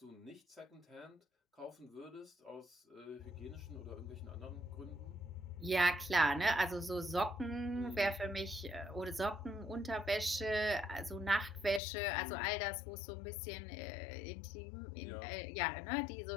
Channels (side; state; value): right; drops out; at 11.8 s